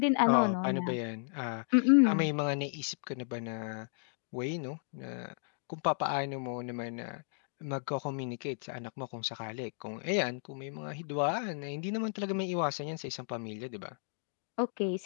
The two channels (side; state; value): right; silent; digital silence